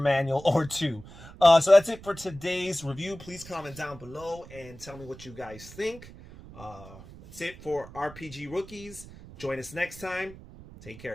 or two. So that's it for today's review. Please comment down below and tell me what you guys think. That's it for RPG Rookies. Join us next time. Take care,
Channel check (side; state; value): right; noise; rumble, 17 dB below the sound